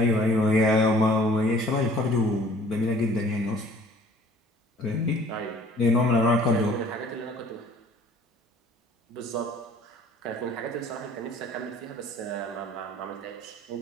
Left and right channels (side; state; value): both; normal; correlation 0.52